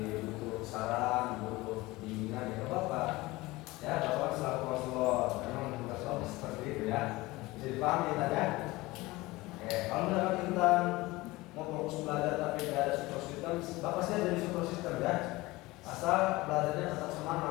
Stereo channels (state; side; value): quieter; right; 20.6 dB